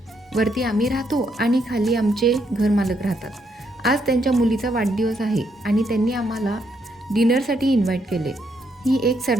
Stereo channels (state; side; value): normal; both; correlation 0.76